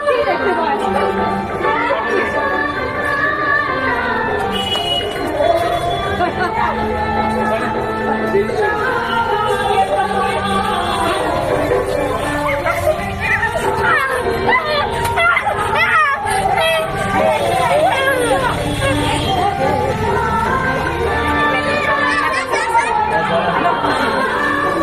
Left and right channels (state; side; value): identical; both; correlation 1.00